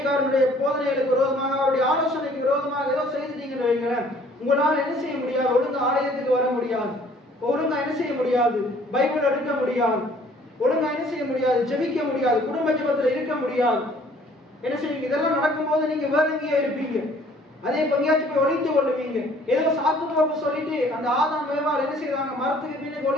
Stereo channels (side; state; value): both; normal; correlation 0.57